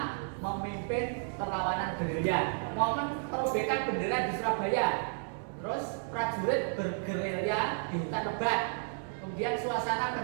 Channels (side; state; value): left; silent; 56 dB below the other